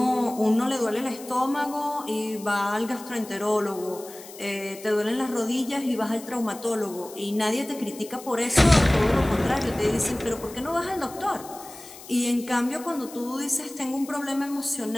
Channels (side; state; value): left; noise; hiss, 17 dB below the sound